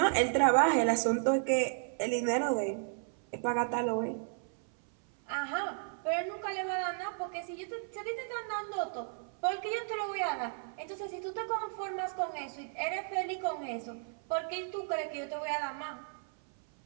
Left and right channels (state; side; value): silent; left; 55 dB below the other